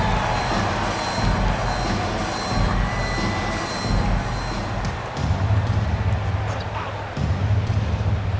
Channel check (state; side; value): identical; both; correlation 1.00